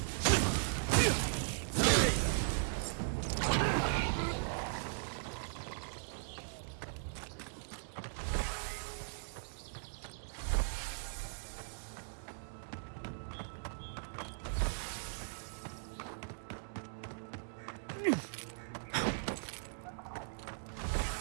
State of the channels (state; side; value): silent; left; digital silence